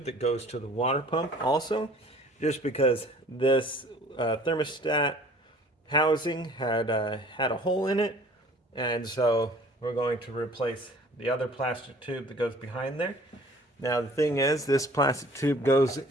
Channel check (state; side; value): normal; both; correlation 0.50